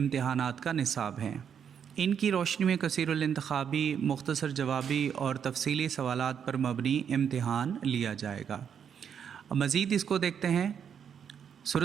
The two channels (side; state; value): left; quieter; 7.9 dB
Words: کا نصاب ہیں۔ ان کی روشنی میں کثیر الانتخابی، مختصر جوابی اور تفصیلی سوالات پر مبنی امتحان لیا جائے گا۔ مزید اس کو دیکھتے ہیں۔